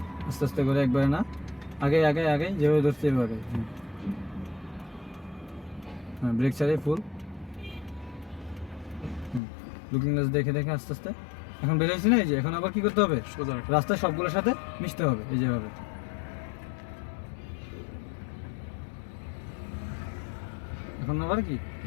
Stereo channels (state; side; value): drops out; right; at 9.4 s